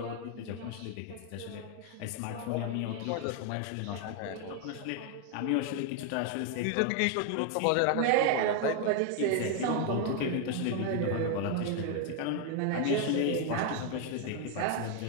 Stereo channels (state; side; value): different; both; correlation 0.00